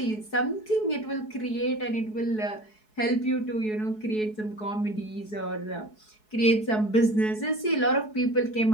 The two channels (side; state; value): right; late; 4.7 ms